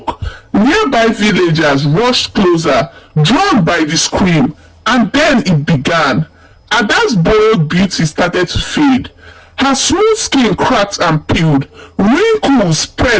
Nearby villagers rushed closer, drawn by the scream, and then it began. Ada's borrowed beauty started to fade. Her smooth skin cracked and peeled. Wrinkles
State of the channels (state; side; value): identical; both; correlation 1.00